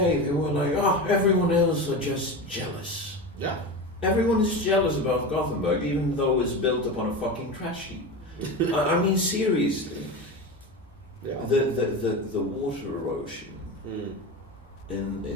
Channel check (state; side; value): normal; both; correlation 0.24